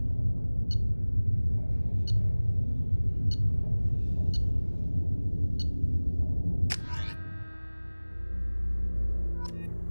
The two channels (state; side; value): inverted; both; correlation -1.00